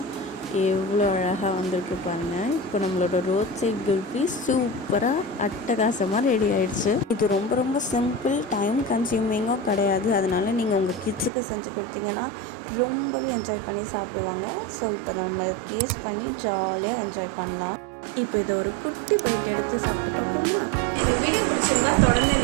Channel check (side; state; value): left; drops out; at 11.3 s